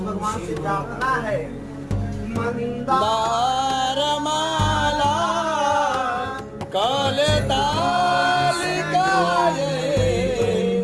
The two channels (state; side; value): identical; both; correlation 1.00